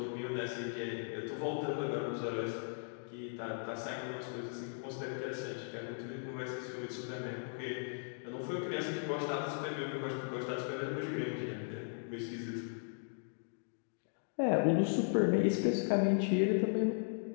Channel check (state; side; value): silent; right; digital silence